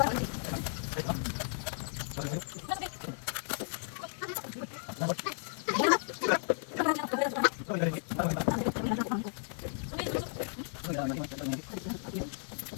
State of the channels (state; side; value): silent; right; 55 dB below the other